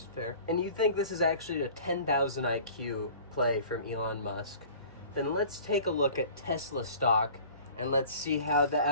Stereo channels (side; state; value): both; inverted; correlation -0.45